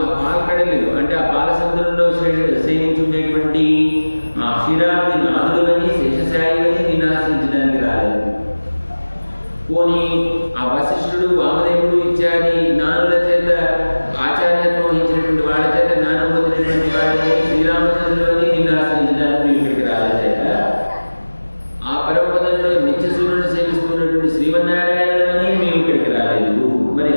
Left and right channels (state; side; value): inverted; both; correlation -1.00